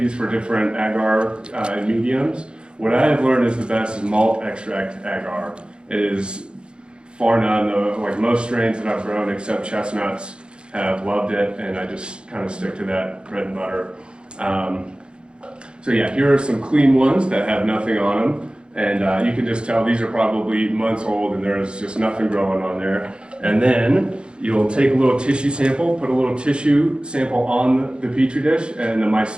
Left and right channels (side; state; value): left; late; 0.053 ms